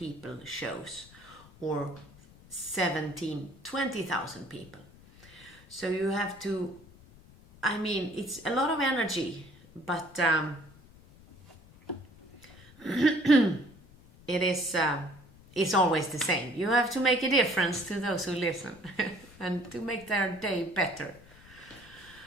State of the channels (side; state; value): left; noise; rumble, 23 dB below the sound